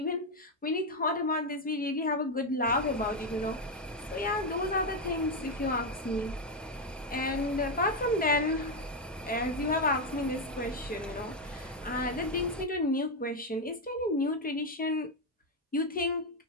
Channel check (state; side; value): normal; both; correlation 0.05